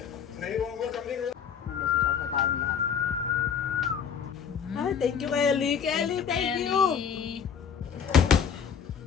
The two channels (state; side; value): quieter; right; 7.4 dB